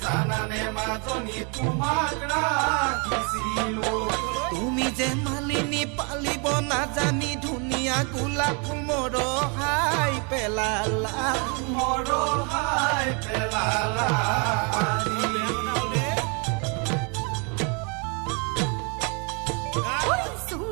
জানানে মাজনী তোমাক ৰাখিছিলো তুমি যে মালিনী পালিব নাজানি ধুনীয়া গোলাপ ফুল মৰহাই পেলালা মৰহাই পেলালা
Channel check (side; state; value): left; quieter; 34.7 dB